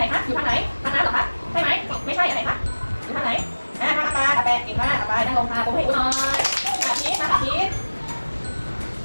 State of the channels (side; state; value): both; inverted; correlation -1.00